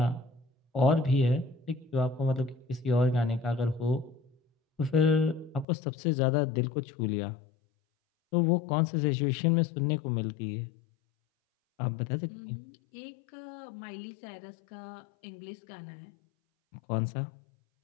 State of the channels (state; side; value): drops out; right; at 5.7 s